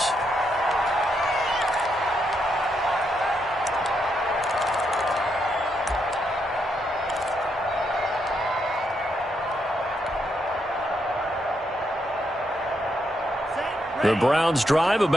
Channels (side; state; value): both; normal; correlation 0.79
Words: The Browns drive